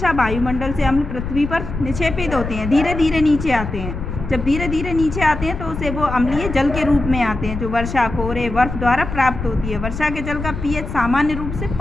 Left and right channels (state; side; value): noise; left; rumble, 7 dB below the sound